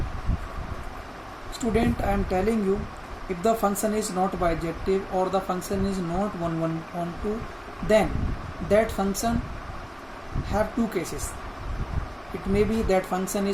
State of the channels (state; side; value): identical; both; correlation 1.00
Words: Student, I am telling you, if the function is not bijective or the function is not 1 1 on 2, then that function have two cases. It may be that function